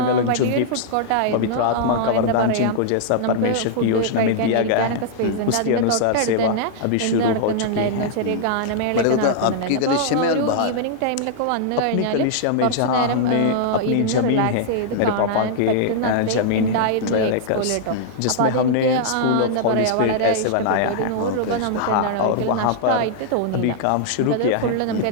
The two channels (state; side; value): different; both; correlation -0.01